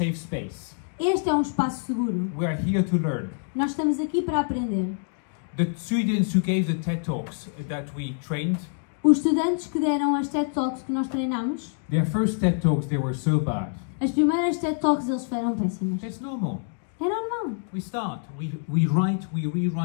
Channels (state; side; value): silent; right; 61 dB below the other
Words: space. Este é um espaço seguro. We are here to learn. Nós estamos aqui para aprender. The students who gave the TED Talks that we trained, Os estudantes que deram as TED Talks que nós treinamos, their first TED Talks, they were so bad. as primeiras TED Talks eles foram péssimas. It's normal. É normal. We start, we write, we